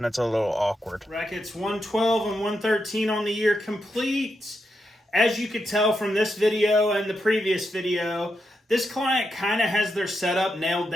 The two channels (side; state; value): both; normal; correlation 0.84